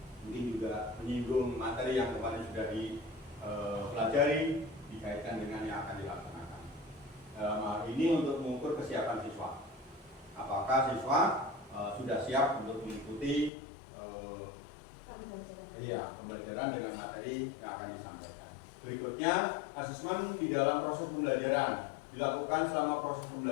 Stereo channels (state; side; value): drops out; right; at 13.5 s